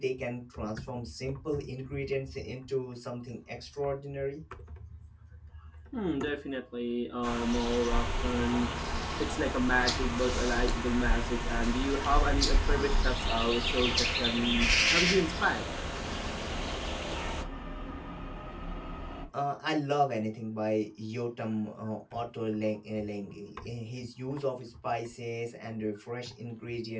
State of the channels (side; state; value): both; identical; correlation 1.00